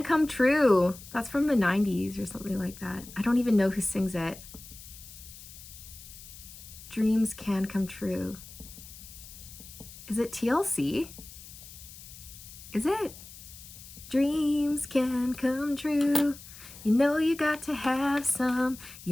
come true. That's from the 90s or something like that. I don't even know who sings it. Dreams can come true. Is it TLC? Is it? Dreams can come true. You know you got to have some.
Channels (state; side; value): noise; left; hiss, 16 dB below the sound